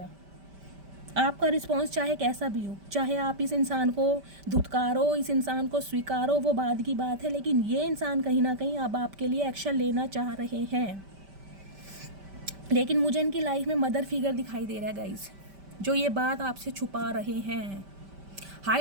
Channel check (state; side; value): late; left; 5.1 ms